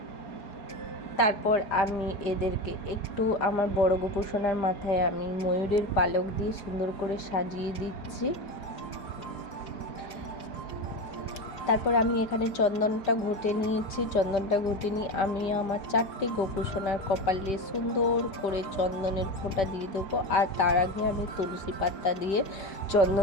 তারপর আমি এদেরকে একটু আমার বড় গোপু সোনার মাথায় আমি ময়ূরের পালক দিয়ে সুন্দর করে সাজিয়ে দিচ্ছি। তারপর আমি এখানে চন্দনটা ঘুটে নিয়েছি। চন্দনটা ঘুটে নিয়ে আমি আমার 4টে গোপু সোনার কপালে সুন্দর করে চন্দনের ফোঁটা দিয়ে দেবো। আর তার আগে আমি তুলসী পাতা দিয়ে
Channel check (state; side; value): late; right; 5.1 ms